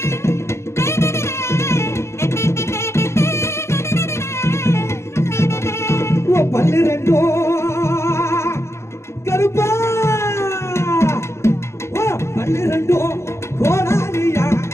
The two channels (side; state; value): right; late; 0.13 ms